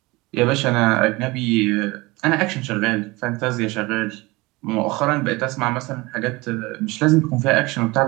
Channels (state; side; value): quieter; left; 22.9 dB